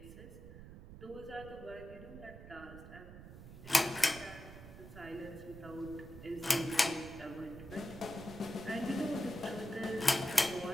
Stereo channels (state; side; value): noise; right; rumble, 14 dB below the sound